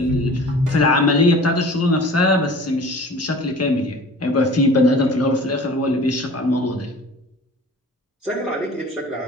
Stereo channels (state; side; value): normal; both; correlation 0.43